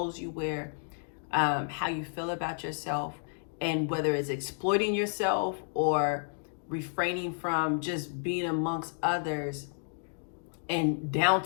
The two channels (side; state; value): right; silent; digital silence